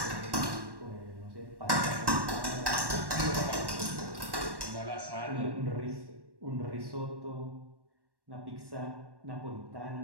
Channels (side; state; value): left; late; 1.1 ms